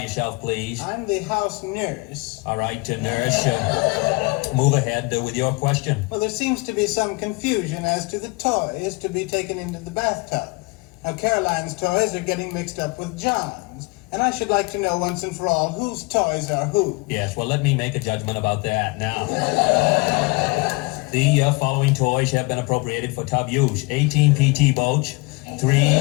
please. I'm the house nurse. All right, nurse, move ahead with your question. Well, there seems to be some confusion as to the toys to be taken into the bathtub. Now, Caroline's toys are getting mixed up with John's, and I should like to know once and for all whose toys are who. Yes, well, let me make a judgment about that now. The following toys have been appropriated for tub use. 18 PT boats, 3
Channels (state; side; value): quieter; right; 27.3 dB